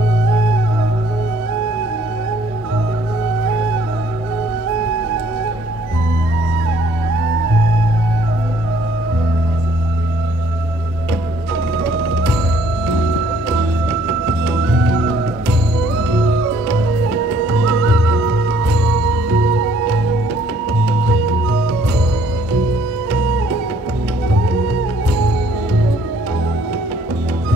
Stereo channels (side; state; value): both; normal; correlation 0.62